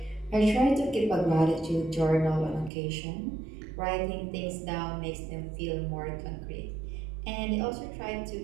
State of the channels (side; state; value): left; drops out; at 2.7 s